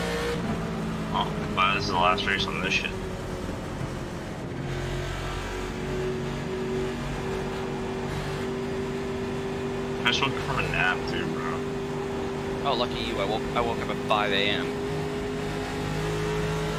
Oh, but this is the last race on this shit. I just woke up from a nap too, bro. Oh, lucky you! I woke up at 5 a.m.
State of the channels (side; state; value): both; identical; correlation 1.00